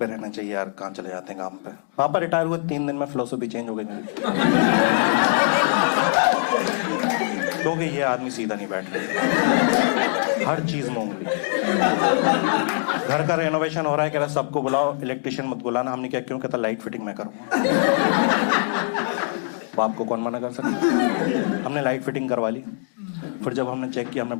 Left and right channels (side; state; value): right; silent; digital silence